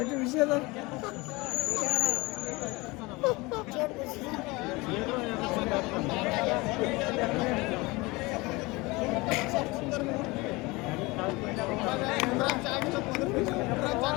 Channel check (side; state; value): right; quieter; 23.6 dB